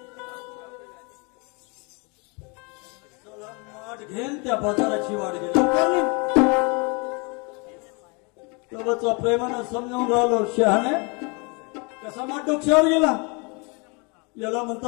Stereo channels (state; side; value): quieter; right; 31.5 dB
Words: घेन त्या बाजाराची वाट गेली तोबतचा प्रेमानं समजावून राहिलो शहाणे कसा माठ डोक्यावर गेला याला